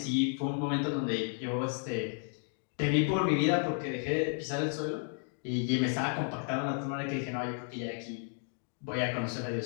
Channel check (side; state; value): right; silent; 56 dB below the other